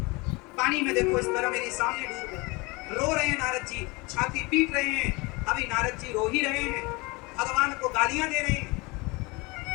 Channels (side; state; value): right; quieter; 25.8 dB